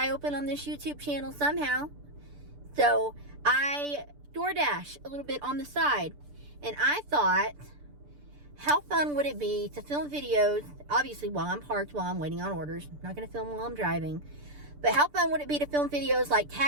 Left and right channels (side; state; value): left; late; 6.8 ms